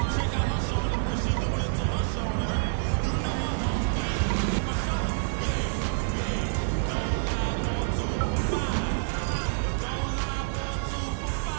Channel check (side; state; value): left; silent; digital silence